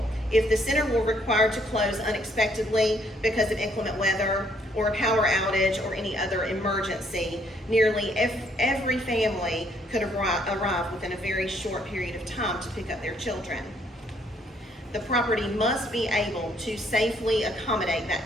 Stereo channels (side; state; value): both; normal; correlation 0.68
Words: if the center were required to close unexpectedly because of inclement weather or a power outage or any other emergency, nearly every family could arrive within a very short period of time to pick up their children. The property must be able to safely accommodate that